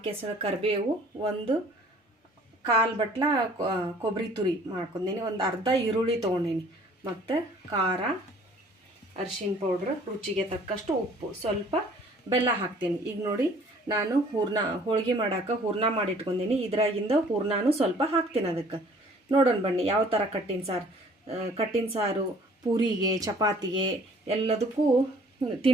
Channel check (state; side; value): normal; both; correlation 0.54